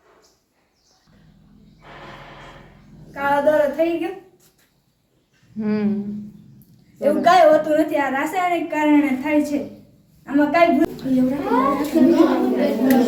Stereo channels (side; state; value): both; identical; correlation 1.00